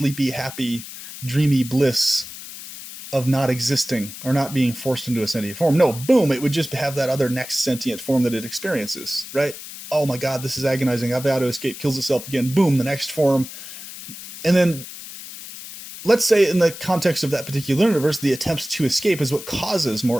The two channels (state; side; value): noise; left; hiss, 13 dB below the sound